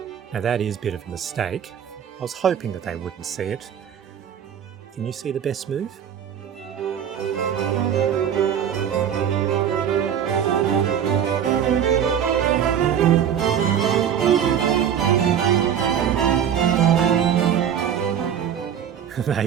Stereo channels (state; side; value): quieter; left; 8.9 dB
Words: Now that is a bit of a mistake. I was hoping that they wouldn't see it. Can you see the best move? They